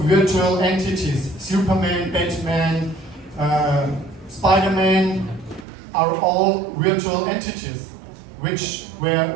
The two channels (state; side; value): drops out; left; at 5.7 s